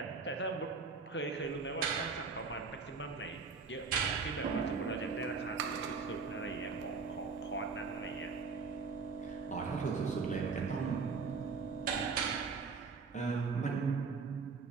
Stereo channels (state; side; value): quieter; left; 4.8 dB